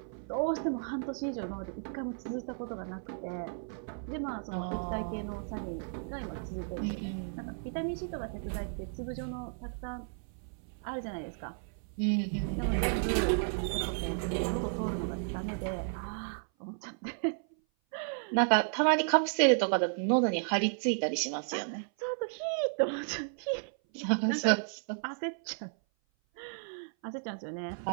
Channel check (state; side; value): silent; left; 55 dB below the other